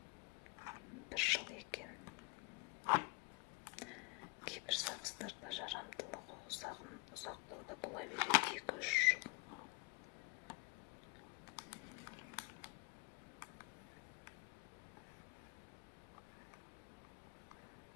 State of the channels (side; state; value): right; quieter; 27.9 dB